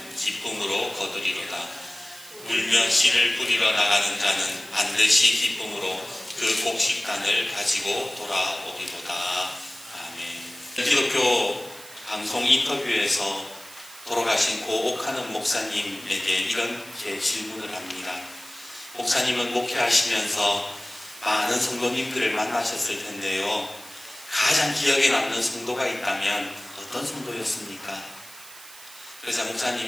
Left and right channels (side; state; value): right; noise; hiss, 18 dB below the sound